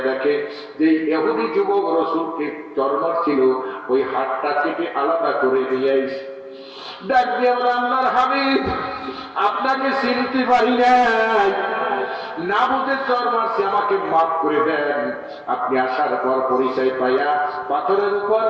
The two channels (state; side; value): identical; both; correlation 1.00